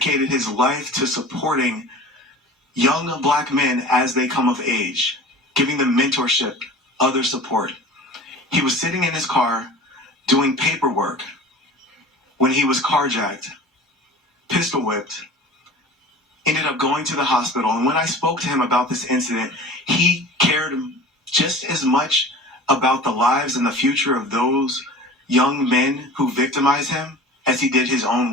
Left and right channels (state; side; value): normal; both; correlation 0.40